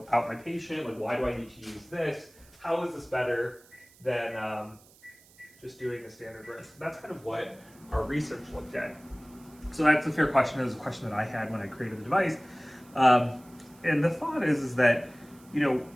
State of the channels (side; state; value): right; noise; hiss, 26 dB below the sound